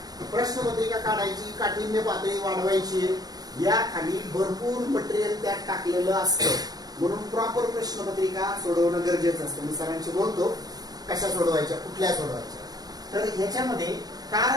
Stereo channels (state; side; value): late; left; 0.19 ms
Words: प्रश्नपत्रिका काढायची, काठिण्य पातळी वाढवायची, या खाली भरपूर मटेरियल त्यात टाकलेलं असतं. म्हणून प्रॉपर प्रश्नपत्रिका सोडवणं गरजेचं असतं. मी सरांशी बोलतो कशा सोडवायच्या, कुठल्या सोडवायच्या. तर ह्याच्यामध्ये,